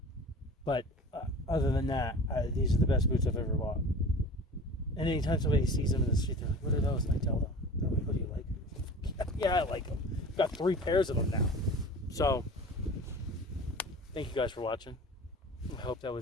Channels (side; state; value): both; normal; correlation 0.39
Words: But other than that, these are the best boots I've ever bought. And anytime somebody sees them in the street, they're like, "What are those?" And I tell them, they're like, "What do you like?" Yeah, I like them. I've got 3 pairs of them now. So, thank you guys for watching. I hope that